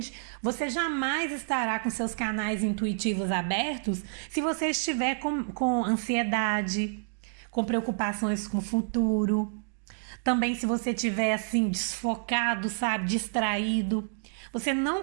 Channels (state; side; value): silent; left; digital silence